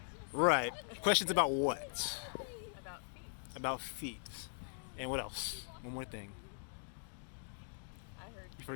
Right. Questions about what? About feet. About feet. And what else? One more thing. I heard You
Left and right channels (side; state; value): right; silent; digital silence